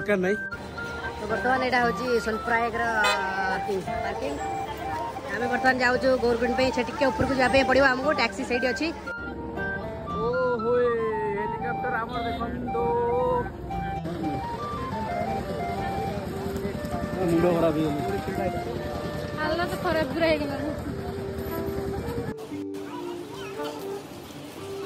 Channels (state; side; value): identical; both; correlation 1.00